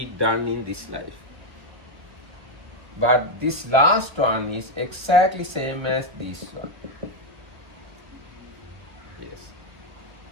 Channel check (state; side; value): late; left; 1.2 ms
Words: done in this life. But this last one is exactly same as this one. Yes.